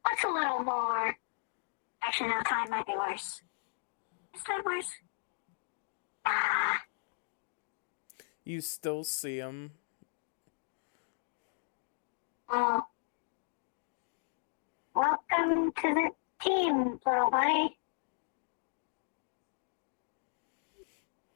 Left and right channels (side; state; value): right; silent; digital silence